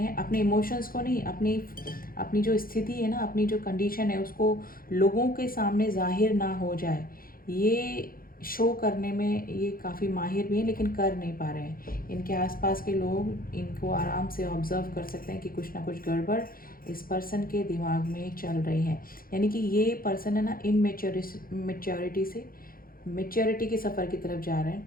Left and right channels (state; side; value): late; right; 0.42 ms